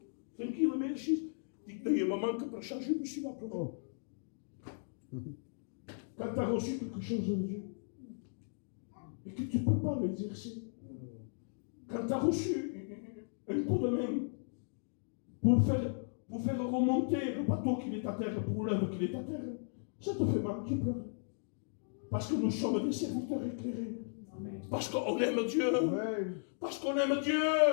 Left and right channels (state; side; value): silent; right; digital silence